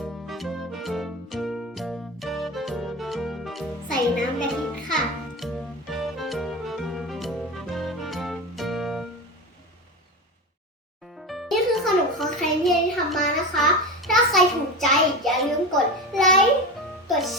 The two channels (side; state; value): both; normal; correlation 0.24